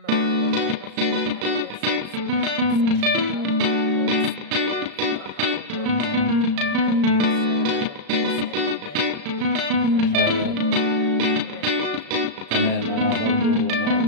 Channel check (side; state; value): left; late; 35 ms